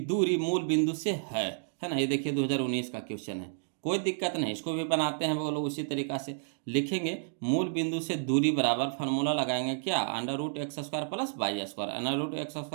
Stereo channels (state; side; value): silent; left; digital silence